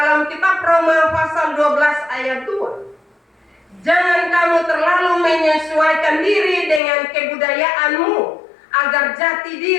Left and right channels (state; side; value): drops out; right; at 6.8 s